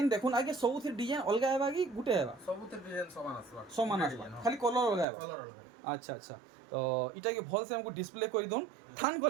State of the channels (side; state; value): left; drops out; at 5.1 s